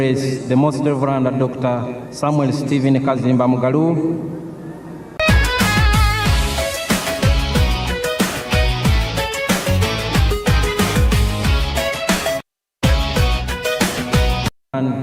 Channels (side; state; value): both; identical; correlation 1.00